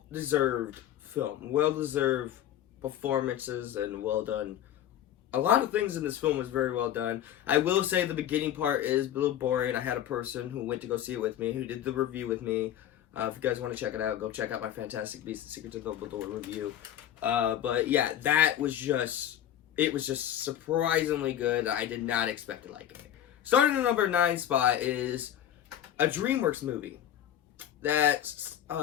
film. Well-deserved performances and well done. A lot of things in this film was very well done. I will say the beginning part is a little boring. I had a person who went to go see it with me, who did the review with me. If you guys want to check it out, go check out my Fantastic Beasts and Secrets of Dumbledore review. But yeah, it was just surprisingly good. I did not expect to like it. Starting at number 9 spot is a DreamWorks movie that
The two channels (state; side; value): quieter; right; 11.1 dB